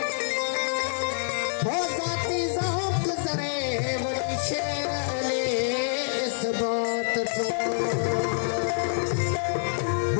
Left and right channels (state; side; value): silent; right; 60 dB below the other